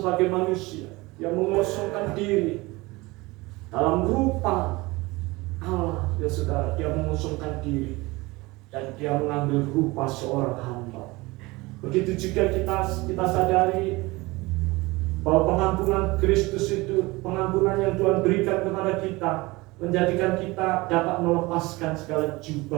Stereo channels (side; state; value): left; quieter; 22.3 dB